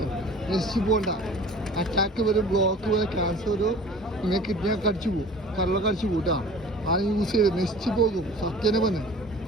നശിച്ചു പോകണ്ട. അറ്റാക്ക് വരും, ബ്ലോക്ക് വരും, ക്യാൻസർ വരും, നിങ്ങൾ കിഡ്നിയൊക്കെ അടിച്ചു പോകും, കരളൊക്കെ അടിച്ചു പോകും കേട്ടോ. അത് യൂസ് ചെയ്ത് നശിച്ചു പോകും. സത്യനെ പറഞ്ഞേ,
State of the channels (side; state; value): both; normal; correlation 0.44